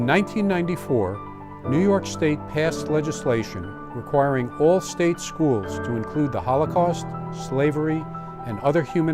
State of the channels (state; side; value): identical; both; correlation 1.00